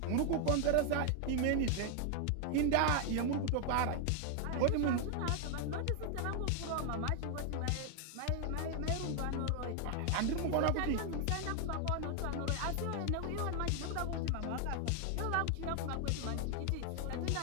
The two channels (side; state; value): both; different; correlation 0.00